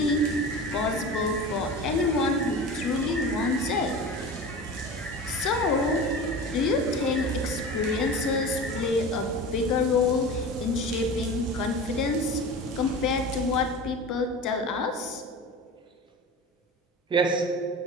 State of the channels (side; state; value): both; normal; correlation 0.33